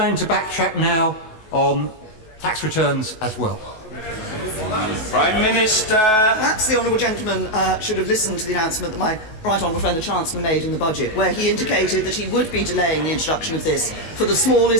to backtrack now on tax returns as well? Prime Minister. Perhaps the honourable gentleman should have listened to the announcement that my right honourable friend the Chancellor made in the budget, where he indicated that he would be delaying the introduction of this for the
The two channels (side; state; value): right; late; 19 ms